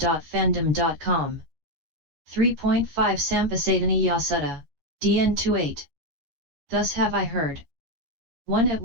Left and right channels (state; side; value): late; left; 13 ms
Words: 3.5 Sampasadaniya Sutta, DN 28. Thus have I heard. At